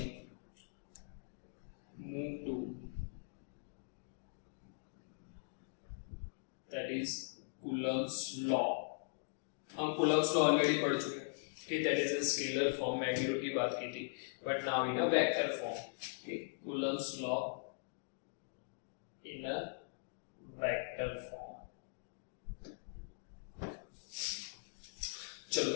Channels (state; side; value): silent; right; digital silence